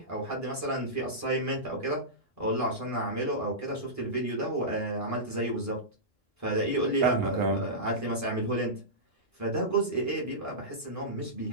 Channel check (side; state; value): both; normal; correlation -0.16